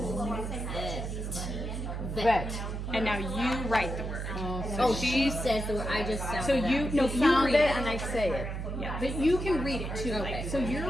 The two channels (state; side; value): noise; right; hum, 4 dB below the sound